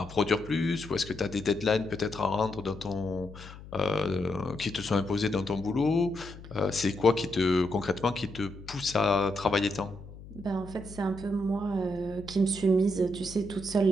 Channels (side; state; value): left; noise; hum, 16 dB below the sound